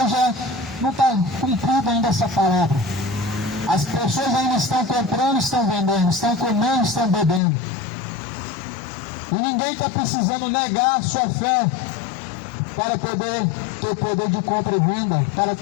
não está cumprida ainda essa palavra. As pessoas ainda estão comprando, estão vendendo, estão comendo, estão bebendo. E ninguém está precisando negar a sua fé para poder ter poder de compra e venda, para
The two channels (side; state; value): right; drops out; at 7.4 s